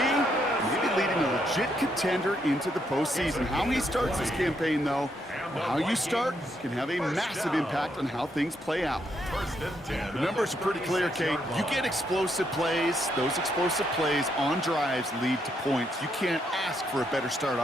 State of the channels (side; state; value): both; normal; correlation 0.76